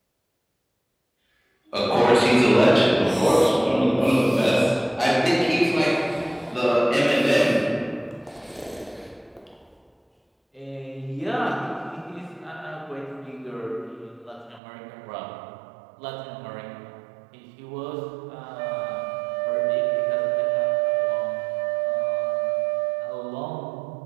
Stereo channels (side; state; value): left; drops out; at 14.6 s